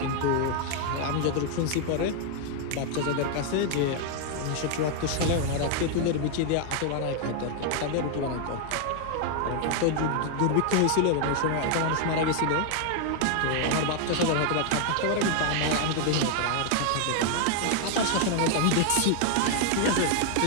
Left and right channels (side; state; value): both; different; correlation 0.00